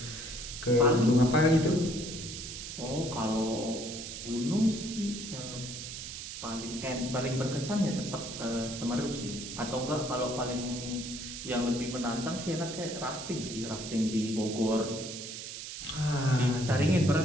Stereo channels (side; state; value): right; noise; hiss, 8 dB below the sound